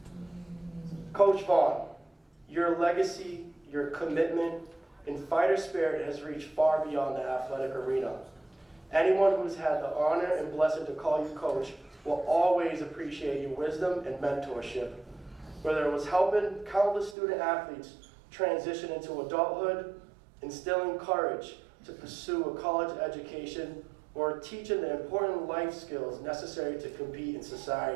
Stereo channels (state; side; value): drops out; left; at 17.2 s